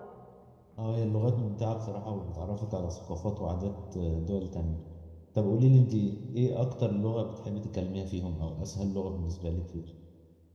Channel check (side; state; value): both; identical; correlation 1.00